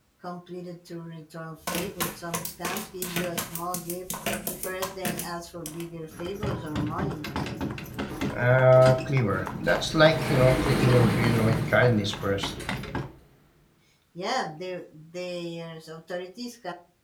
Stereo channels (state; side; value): identical; both; correlation 1.00